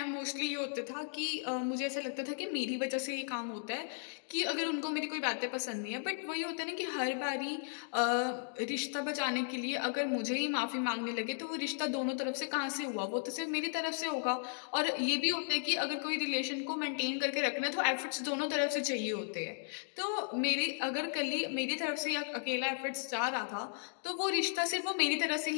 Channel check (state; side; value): silent; right; digital silence